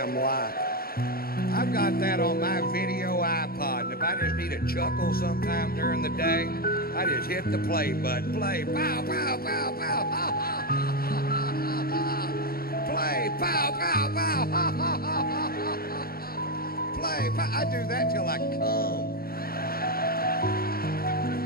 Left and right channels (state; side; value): late; right; 0.44 ms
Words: life. I've got that on my video iPod, and if I just need a chuckle sometime during the day, I just hit the play button. Play, pow, pow, pow, pow, ha, ha, ha, ha, ha, ha. Play, pow, pow, pow, ha, ha, ha, ha, ha. Play, pow. I do that till I come.